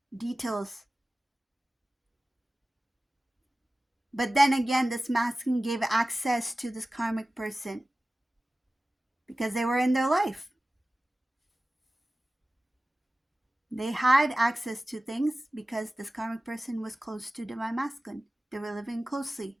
details. But then again, this masculine gave access to this karmic person because they were in their life. They had access to things because this karmic person was close to divine masculine. They were living closely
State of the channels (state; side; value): normal; both; correlation 0.96